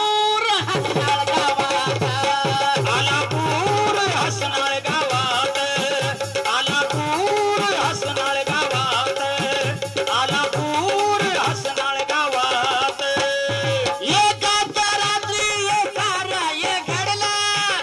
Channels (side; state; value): both; identical; correlation 1.00